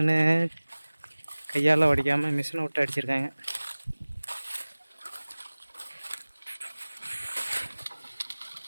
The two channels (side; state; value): both; inverted; correlation -1.00